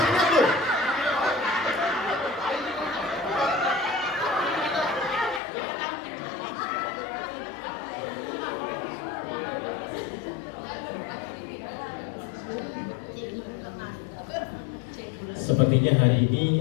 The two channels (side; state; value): right; drops out; at 5.4 s